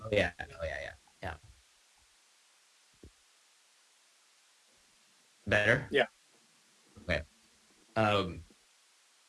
Oh yeah. Oh yeah. Yeah. Yeah. Better. Yeah. Okay. Um,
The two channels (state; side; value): identical; both; correlation 1.00